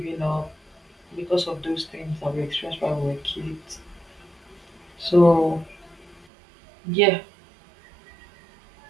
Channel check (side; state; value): left; drops out; at 6.2 s